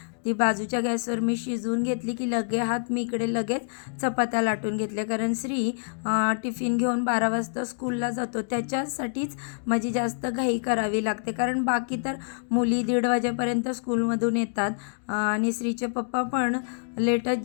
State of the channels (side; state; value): right; silent; digital silence